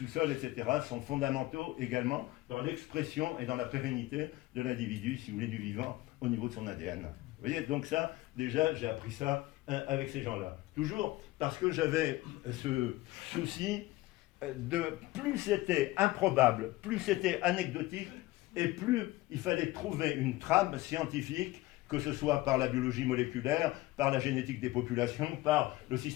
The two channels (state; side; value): quieter; right; 18.5 dB